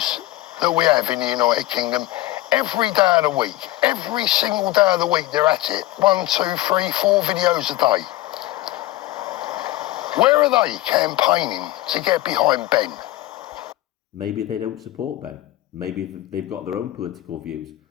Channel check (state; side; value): quieter; right; 16.7 dB